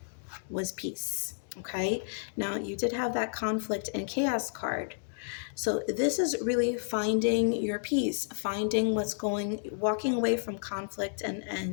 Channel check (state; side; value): silent; right; digital silence